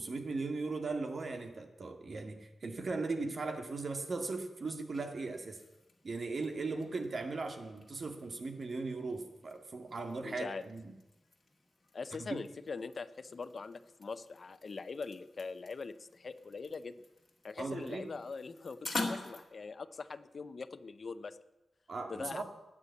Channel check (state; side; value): normal; both; correlation 0.89